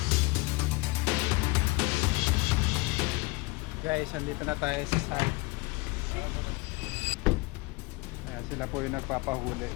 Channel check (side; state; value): right; quieter; 23.9 dB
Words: Guys, andito na tayo sa site. Ayan, sila po yung nagpapahuli.